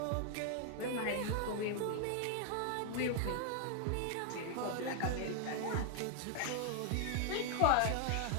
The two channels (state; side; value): different; both; correlation 0.00